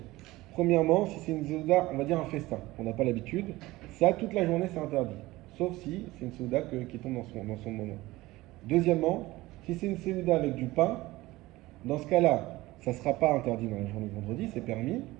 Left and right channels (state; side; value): quieter; left; 18.9 dB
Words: premièrement, si c'est une Seuda, on va dire un festin, on n'a pas l'habitude, ça, toute la journée, c'est interdit. Sauf si c'est une Seuda qui tombe dans son moment. Deuxièmement, si c'est une Seuda avec du pain, dans ce cas-là, ça ne sera pas interdit dans la journée de vendredi, c'est permis.